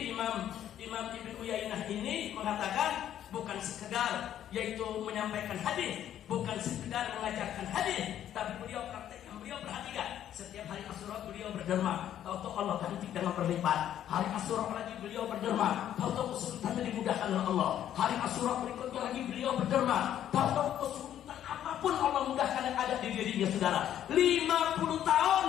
Imam Ibnu Uyainah ini mengatakan bukan sekedar yaitu menyampaikan hadis, bukan sekedar mengajarkan hadis, tapi beliau praktekkan, beliau perhatikan. Setiap hari Asyura beliau berderma, tahu-tahu Allah ganti dengan berlipat. Hari Asyura lagi beliau berderma, tahu-tahu kesulitannya dimudahkan oleh Allah. Hari Asyura berikutnya lagi beliau berderma, tahu-tahu kesulitan apapun Allah mudahkan yang ada di dirinya, saudara. 50 tahun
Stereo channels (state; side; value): quieter; right; 10.9 dB